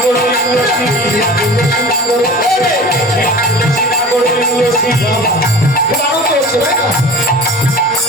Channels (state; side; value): normal; both; correlation 0.39